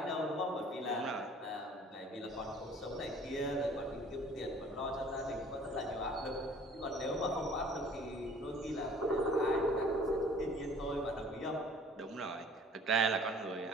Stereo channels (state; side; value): normal; both; correlation 0.52